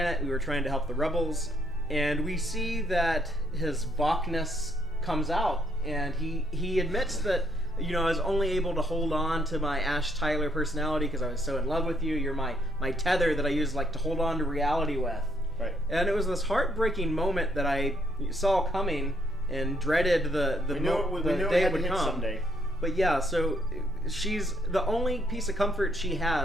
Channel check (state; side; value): normal; both; correlation 0.72